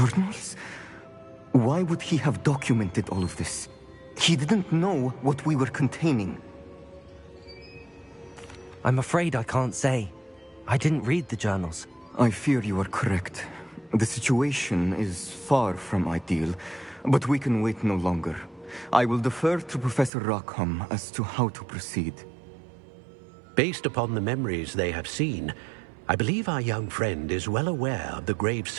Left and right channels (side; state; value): left; drops out; at 20.1 s